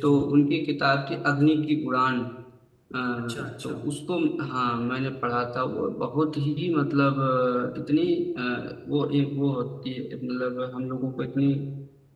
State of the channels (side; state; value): both; identical; correlation 1.00